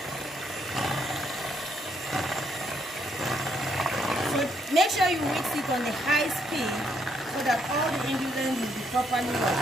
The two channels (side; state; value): both; normal; correlation 0.73